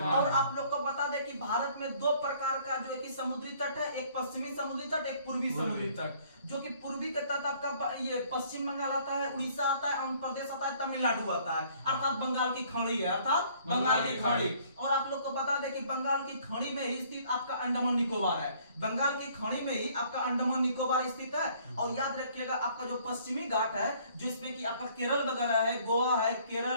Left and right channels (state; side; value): inverted; both; correlation -0.59